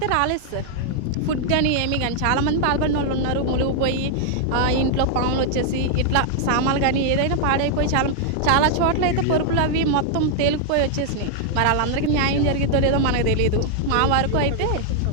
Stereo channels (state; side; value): different; both; correlation 0.00